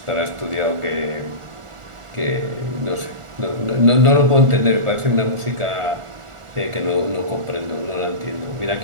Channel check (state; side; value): late; left; 1.4 ms